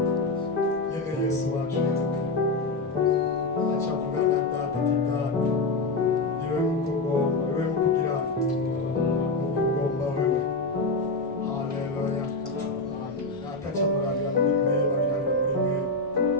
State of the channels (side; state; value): right; quieter; 3.3 dB